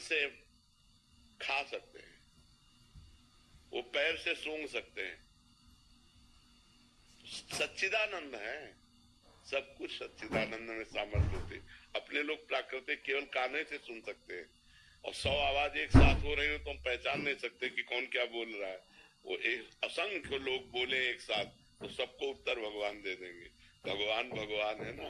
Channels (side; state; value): both; identical; correlation 1.00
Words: से खा सकते हैं, वो पैर से सूंघ सकते हैं। सच्चिदानंद है, सब कुछ सच्चिदानंद में सामर्थ्य होती। अपने लोग प्राकृतिक केवल काने से सुन सकते हैं, और 100 आवाज एक साथ हो रही हो तो हम पहचान नहीं सकते कि कौन क्या बोल रहा है। वो एक असंख्य लोग बोले एक साथ तो सबको उत्तर भगवान दे देंगे। भगवान भगवान है